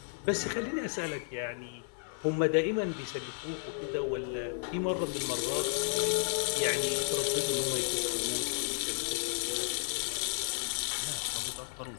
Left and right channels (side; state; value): right; silent; 56 dB below the other